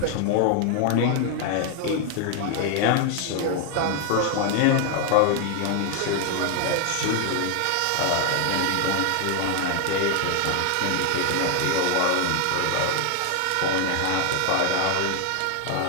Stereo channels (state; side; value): different; both; correlation 0.00